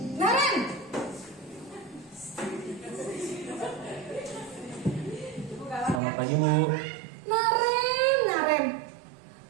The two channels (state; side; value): drops out; left; at 6.0 s